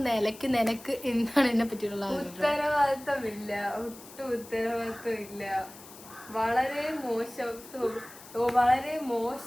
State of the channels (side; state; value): left; noise; hiss, 18 dB below the sound